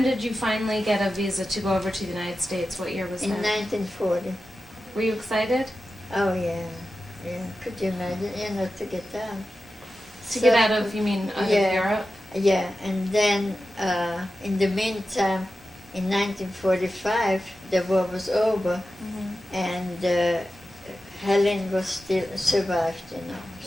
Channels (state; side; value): normal; both; correlation 0.93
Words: did you finally get a visa to go over to the United States? What year was In that? 1940. Were you excited? Oh yeah, yeah. Could you imagine, you know, to get out? To get out of, you mean, out of Europe? Yeah, and then in the meantime, in 1945, the war was over, and Helen was still survived, you know.